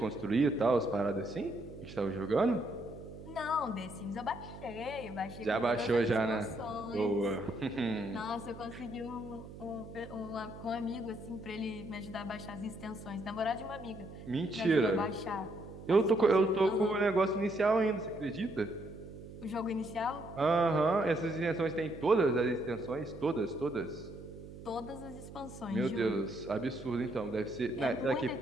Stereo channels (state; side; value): noise; right; hum, 14 dB below the sound